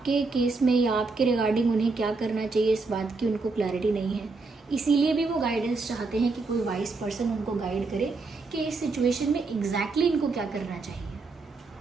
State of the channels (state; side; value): quieter; left; 3.9 dB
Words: केस में या आपके रिगार्डिंग उन्हें क्या करना चाहिए इस बात की उनको क्लैरिटी नहीं है। इसीलिए भी वो गाइडेंस चाहते हैं कि कोई वाइस पर्सन उनको गाइड करे कि इस सिचुएशन में एग्जैक्टली इनको क्या करना चाहिए।